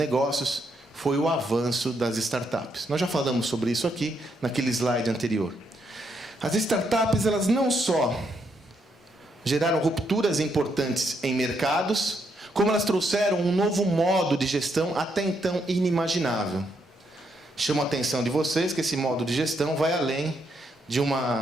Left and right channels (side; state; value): both; normal; correlation 0.77